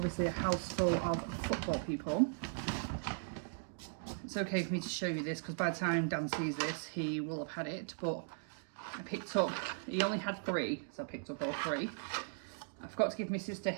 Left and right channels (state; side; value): silent; left; digital silence